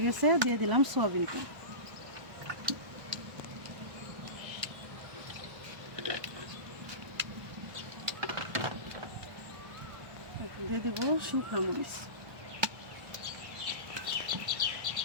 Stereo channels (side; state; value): left; late; 1.2 ms